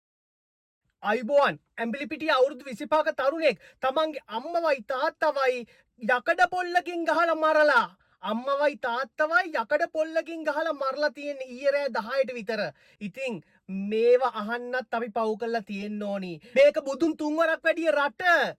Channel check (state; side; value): identical; both; correlation 1.00